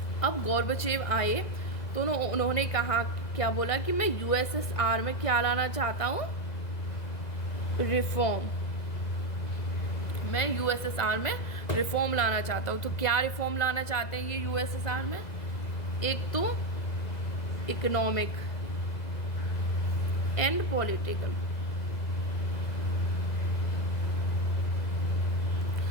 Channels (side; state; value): right; late; 2.0 ms